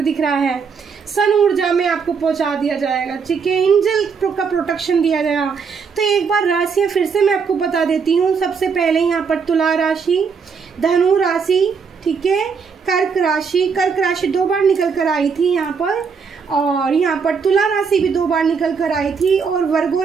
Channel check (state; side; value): quieter; left; 5.8 dB